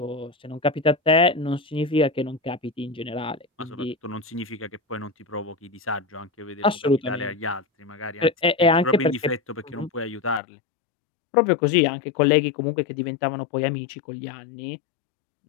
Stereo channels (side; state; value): right; drops out; at 10.4 s